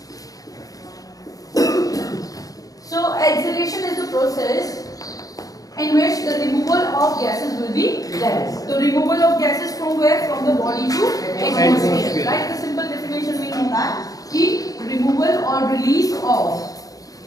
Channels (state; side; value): late; right; 0.17 ms